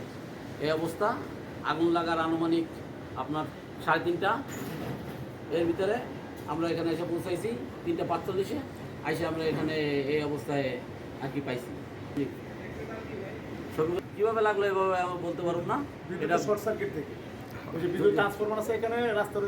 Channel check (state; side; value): identical; both; correlation 1.00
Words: এই অবস্থা, আগুন লাগার আনুমানিক আপনার 3:30 এর ভিতরে আমরা এখানে এসে পৌঁছাইছি। 3:45 এসে আমরা এখানে এই অবস্থায় আর কি পাইছি। কীভাবে লাগলো এভাবে আমি বলতে পারব না। এটা শর্ট সার্কিট থেকে ওই যে বিদ্যুৎ ট্রান্সফরমার আছে এখানে রাস্তার